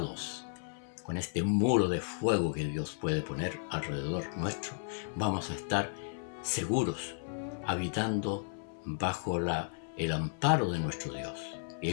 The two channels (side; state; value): right; silent; 55 dB below the other